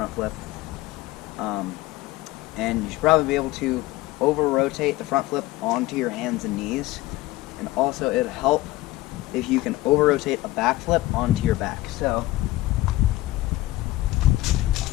flip. And you should probably be able to over-rotate the front flip onto your hands and knees. And also, it'll help if you can over-rotate a back flip onto your back. So,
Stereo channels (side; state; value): right; quieter; 17.9 dB